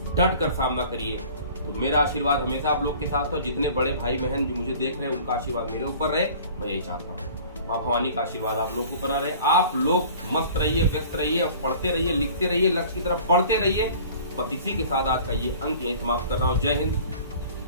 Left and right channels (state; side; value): inverted; both; correlation -0.46